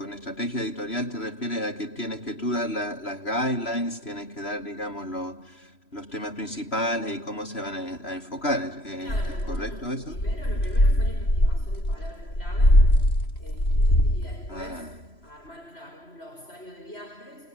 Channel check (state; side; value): late; right; 3.0 ms